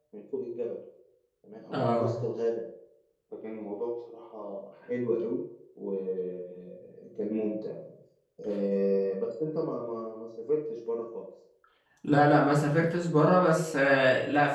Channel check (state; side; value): identical; both; correlation 1.00